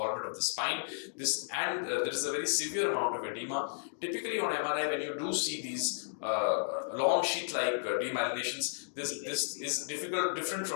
of the spine. There is a very severe amount of edema. Typically on MRI, when you do see these long sheath-like demyelinations, this is different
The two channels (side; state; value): right; silent; digital silence